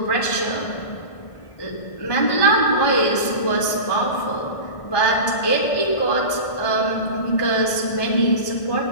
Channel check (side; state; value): right; late; 1.5 ms